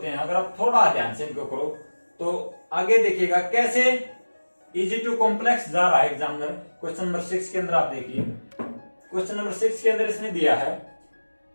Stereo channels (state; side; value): inverted; both; correlation -1.00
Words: हैं। अगर आप थोड़ा ध्यान से इनको करो तो आगे देखिएगा कैसे इजी टू कॉम्प्लेक्स जा रहा है एग्जामिनर। क्वेश्चन नंबर 6 के अंदर आप देखिए, क्वेश्चन नंबर 6 के अंदर इसने दिया है